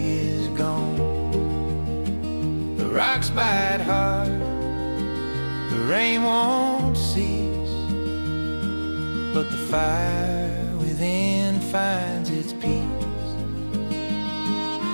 is gone. The rocks bite hard, the rain won't cease, but the fire within finds its peace.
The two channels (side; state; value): both; inverted; correlation -1.00